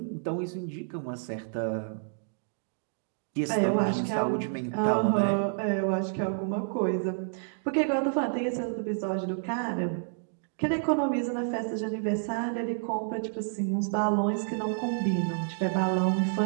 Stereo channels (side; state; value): left; silent; digital silence